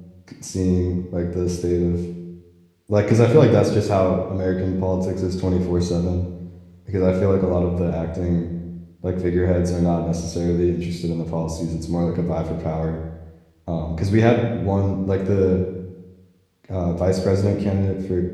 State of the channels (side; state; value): both; identical; correlation 1.00